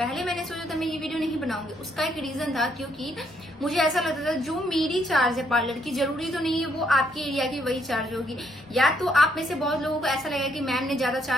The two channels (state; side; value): normal; both; correlation 0.72